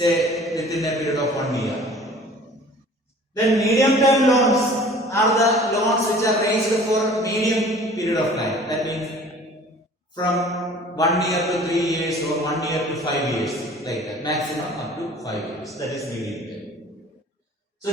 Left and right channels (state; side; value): normal; both; correlation 0.48